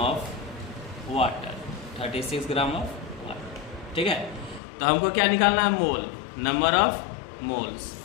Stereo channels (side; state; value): right; drops out; at 4.6 s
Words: of water, 36 gram of water, ठीक है। तो हमको क्या निकालना है? मोल, नंबर ऑफ मोल्स।